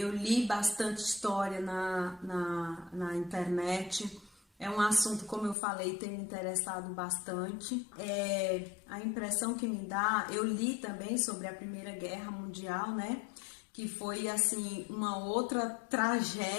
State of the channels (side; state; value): right; drops out; at 5.6 s